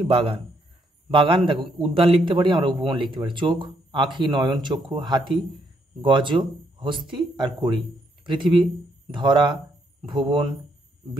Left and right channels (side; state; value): both; normal; correlation 0.73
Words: বাগান। বাগান দেখো উদ্যান লিখতে পারি আমরা, উপবন লিখতে পারি। চোখ, আঁখি, নয়ন, চক্ষু, হাতি, গজ, হস্তি আর কড়ি। পৃথিবী, ধরা, ভুবন,